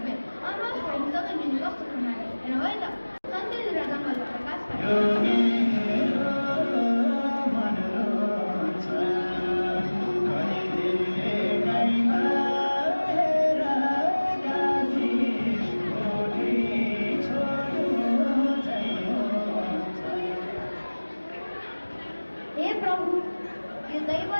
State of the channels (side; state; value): both; inverted; correlation -1.00